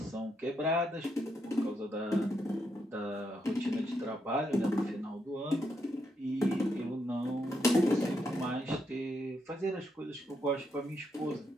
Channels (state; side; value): normal; both; correlation 0.79